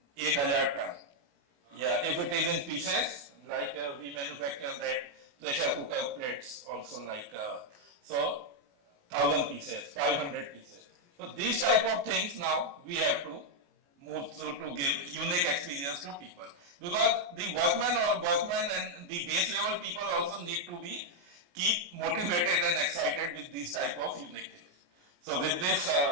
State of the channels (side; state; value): left; late; 28 ms